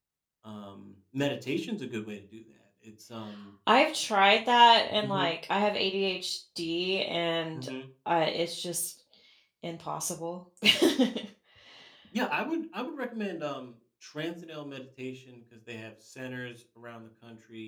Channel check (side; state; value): both; identical; correlation 1.00